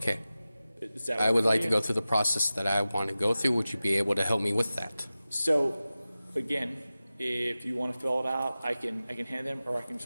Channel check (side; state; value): both; inverted; correlation -0.96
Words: Is that I work would for like you? to go through the process that I want to go through. Would you be able to help me with that? So again, if you want to fill it out, I can hand them, or I can